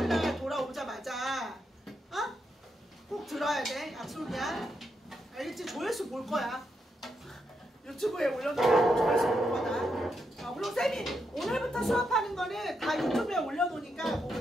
돌아오자마자 꼭 들어야 돼. 약속이야. 알겠지? 조회수 볼 거야. 유튜브에 올려놓고 조회수 볼 거다. 그리고 쌤이 오늘부터 수업하는 거는 다 유튜브에 올려놓으니까 그거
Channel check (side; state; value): both; normal; correlation 0.82